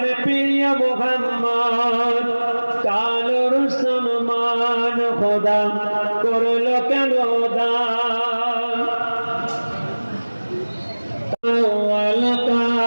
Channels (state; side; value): inverted; both; correlation -1.00